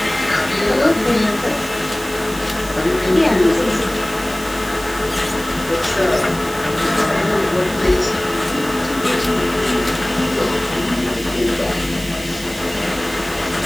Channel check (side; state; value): right; noise; hiss, 15 dB below the sound